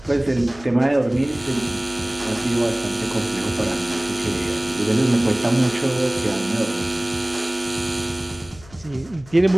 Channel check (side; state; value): left; noise; hum, 22 dB below the sound